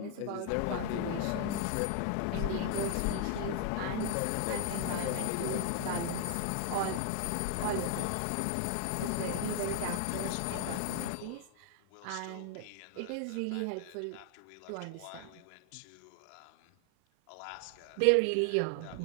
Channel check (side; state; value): both; different; correlation 0.00